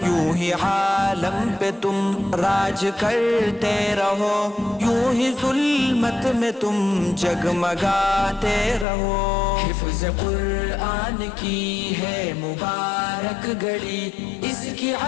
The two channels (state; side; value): drops out; right; at 8.8 s